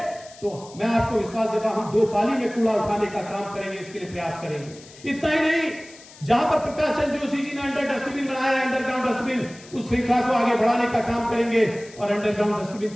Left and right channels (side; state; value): left; noise; hiss, 21 dB below the sound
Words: तो मैं आपको विश्वास देता हूं हम 2 पाली में कूड़ा उठाने का काम करेंगे, इसके लिए प्रयास करेंगे। इतना ही नहीं, जहां पर प्रकाश चंद्र जोशी जी ने अंडर डस्टबिन बनाया है, अंडरग्राउंड डस्टबिन, उस श्रृंखला को आगे बढ़ाने का काम करेंगे और अंडरग्राउंड डस्टबिन